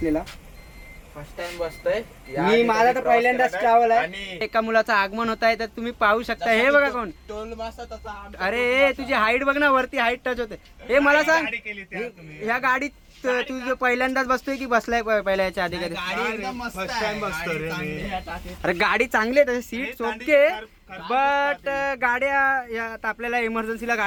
फर्स्ट टाइम बसतोय मी. माझा तर पहिल्यांदाच ट्रॅव्हल आहे. एका मुलाचं आगमन होत आहे तर तुम्ही पाहू शकता. हे बघा कोण? टोल मासा तसा. अरे तुझी हाईट बघ ना, वरती हाईट टच होते. हे मला सांग, ह्या गाडीत तू पहिल्यांदाच बसतोय की बसलाय पहिल्या याच्या आधी कधी? अरे गाडी चांगली आहे, सीट ओके, बट गाड्या आता आपल्याला इमर्जन्सीला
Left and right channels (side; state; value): both; identical; correlation 1.00